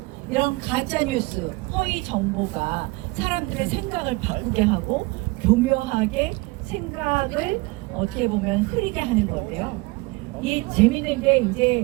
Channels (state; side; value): quieter; left; 24.3 dB